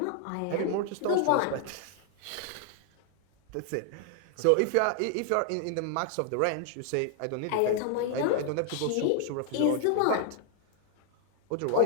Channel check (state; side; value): different; both; correlation 0.00